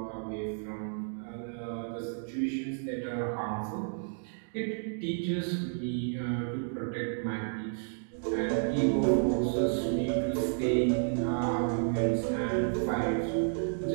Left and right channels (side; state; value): left; silent; digital silence